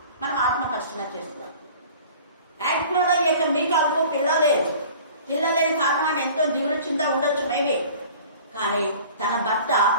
మనం ఆత్మపరిశీలన చేస్తున్నాం. యాక్చువల్గా ఈ యొక్క మీకాలకు పిల్లలేని కారణం ఎంతో దిగులు చింత ఉండొచ్చు మేబీ. కానీ తన భర్త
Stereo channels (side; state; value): both; inverted; correlation -0.45